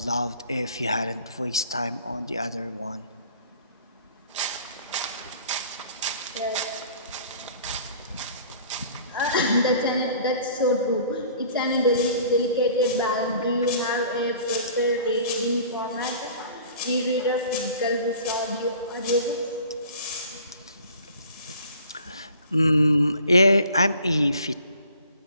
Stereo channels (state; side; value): inverted; both; correlation -0.49